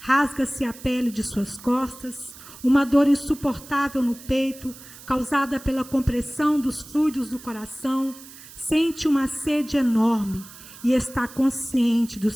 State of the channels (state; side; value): noise; right; hiss, 18 dB below the sound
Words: a pele de suas costas, uma dor insuportável no peito, causada pela compressão dos fluidos do coração. Sente uma sede enorme e está consciente do